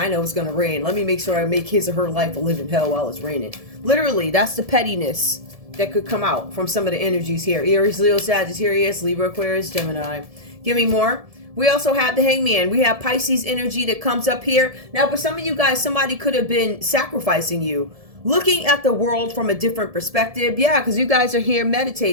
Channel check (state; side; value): late; left; 1.7 ms